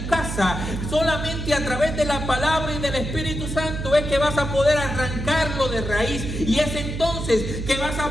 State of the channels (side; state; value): right; noise; hum, 5 dB below the sound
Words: casa. Solamente a través de la palabra y del Espíritu Santo es que vas a poder arrancarlo de raíz. Y es entonces que vas a